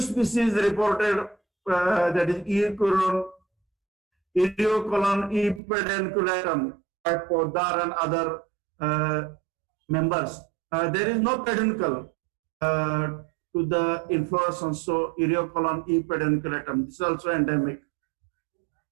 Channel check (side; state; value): left; drops out; at 5.6 s